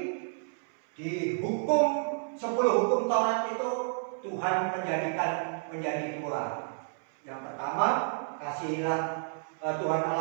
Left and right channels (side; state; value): left; silent; 57 dB below the other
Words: di hukum 10 hukum Taurat itu Tuhan menjadikan menjadi 2. Yang pertama kasihilah Tuhan